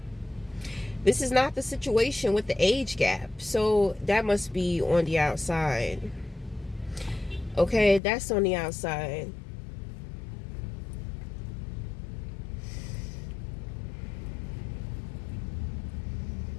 This is not the situation with the age gap. So that must be on the outside. Okay, that's on the outside.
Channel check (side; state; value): right; drops out; at 8.0 s